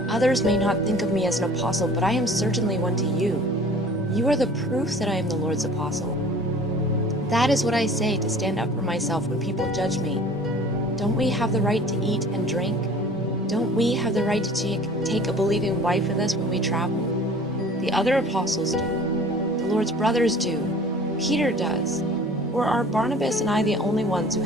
Others may not think of me as an apostle, but I am certainly one to you. You are the proof that I am the Lord's apostle. That is what I say to stand up for myself when people judge me. Don't we have the right to eat and drink? Don't we have the right to take a believing wife with us when we travel? The other apostles do. The Lord's brothers do. Peter does. Or are Barnabas and I the only ones who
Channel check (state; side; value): normal; both; correlation 0.47